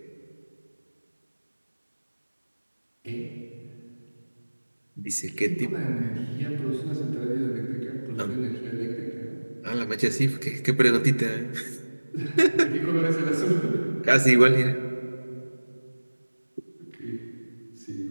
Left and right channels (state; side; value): inverted; both; correlation -1.00